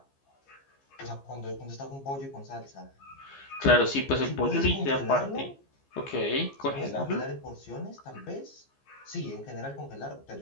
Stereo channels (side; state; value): right; late; 15 ms